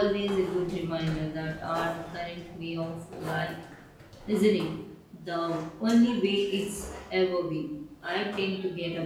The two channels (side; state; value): both; identical; correlation 1.00